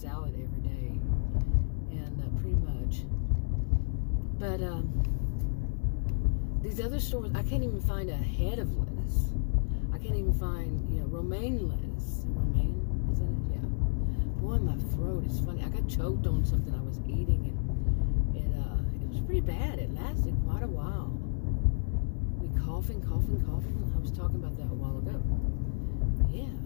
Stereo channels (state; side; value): silent; right; digital silence